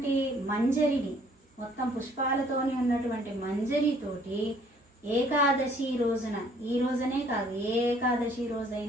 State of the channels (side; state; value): both; normal; correlation 0.60